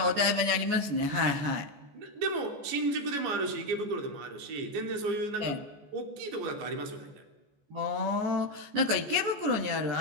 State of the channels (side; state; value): left; late; 14 ms